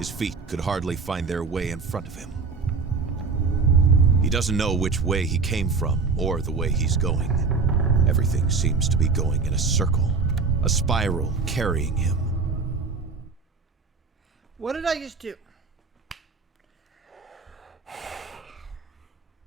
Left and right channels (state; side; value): quieter; left; 4.6 dB